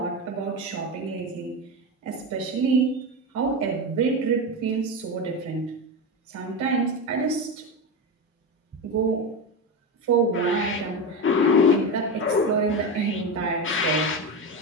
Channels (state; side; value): normal; both; correlation 0.18